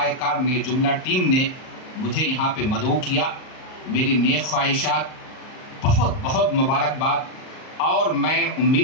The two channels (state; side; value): late; right; 38 ms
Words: کار نے, جملہ ٹیم نے مجھے یہاں پہ مدعو کیا. میری نیک خواہشات, بہت بہت مبارکباد. اور میں